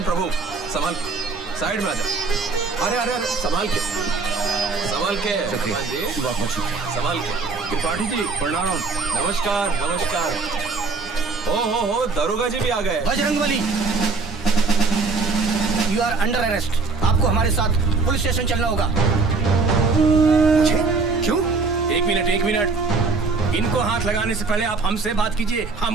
प्रभु संभाल, साइड में आ जा। अरे अरे अरे संभाल के, संभाल के। हनुमान जी संभाल के। त्रिपाठी जी प्रणाम। नमस्कार नमस्कार। हो दरोगा जी भी आ गए। Bajrangbali, you are under arrest. आपको हमारे साथ पुलिस स्टेशन चलना होगा। क्यों? एक मिनट, इनको हाथ लगाने से पहले आप हमसे बात कीजिए,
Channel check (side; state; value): left; quieter; 4.2 dB